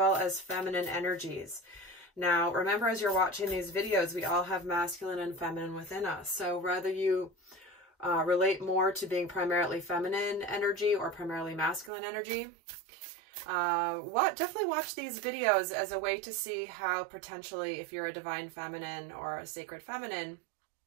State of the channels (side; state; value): left; drops out; at 11.9 s